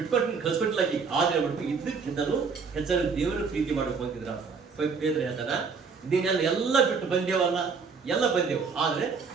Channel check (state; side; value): quieter; left; 5.2 dB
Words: ಕಳ್ಸ್ಕೊಟ್ಟಿಲ್ಲ. ಆದರೆ ಬಿಟ್ಟು ಇದ್ದಕ್ಕಿಂತಲೂ ಹೆಚ್ಚಾಗಿ ದೇವರ ಪ್ರೀತಿ ಮಾಡಬೇಕು ಅಂತಿದ್ರ ಬೇದ್ರೆ ಹೇಳ್ತಾನ. ಇದನ್ನೆಲ್ಲ ಎಲ್ಲ ಬಿಟ್ಟು ಬಂದೇವಲ್ಲ, ಎಲ್ಲ ಬಂದೆವು. ಆದರೆ